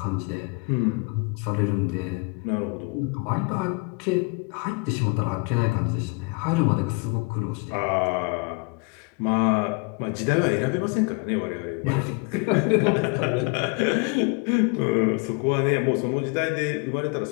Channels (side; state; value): right; quieter; 30.4 dB